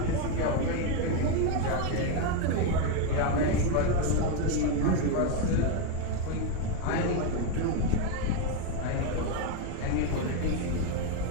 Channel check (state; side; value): different; both; correlation 0.02